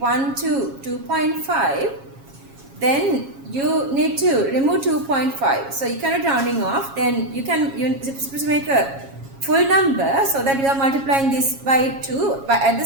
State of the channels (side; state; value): left; late; 7.3 ms